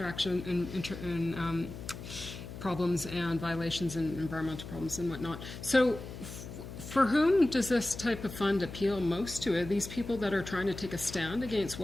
and problems and violations and environmental problems and whatnot. So for whom does this type of fund appeal most to? Are these people that are trying to take a stand against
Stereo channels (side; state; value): left; noise; hum, 11 dB below the sound